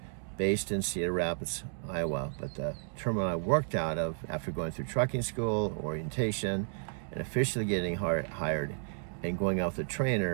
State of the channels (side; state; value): left; silent; digital silence